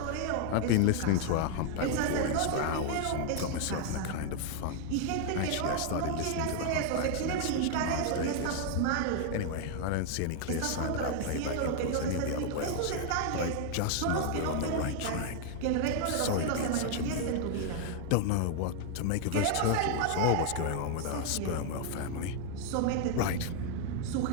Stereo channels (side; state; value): both; different; correlation 0.00